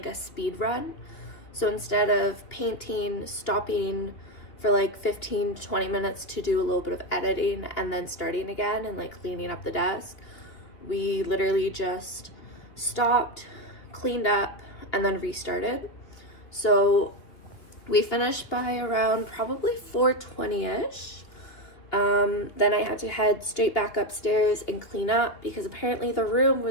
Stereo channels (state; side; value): late; right; 2.7 ms